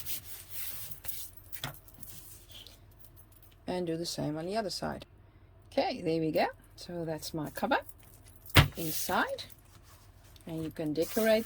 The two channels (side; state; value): both; identical; correlation 1.00